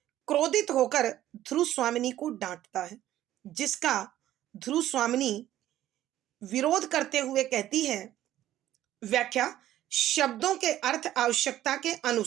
क्रोधित होकर ध्रुव स्वामिनी को डांटता है, जिसका ध्रुव स्वामिनी विरोध करते हुए कहती है, व्याख्या, शब्दों के अर्थ आवश्यकता के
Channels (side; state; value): left; quieter; 13.2 dB